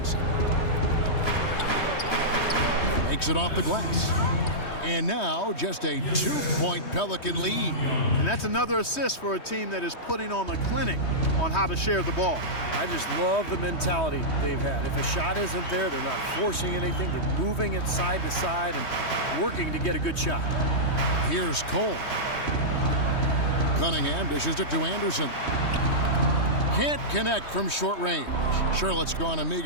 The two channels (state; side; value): late; right; 3.2 ms